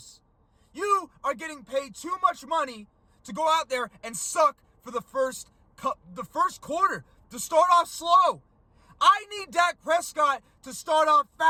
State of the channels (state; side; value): identical; both; correlation 1.00